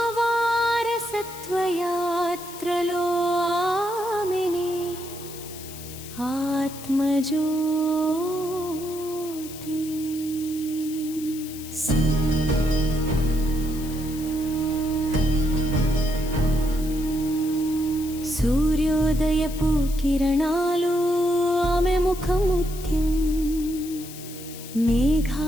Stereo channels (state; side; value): noise; left; hiss, 14 dB below the sound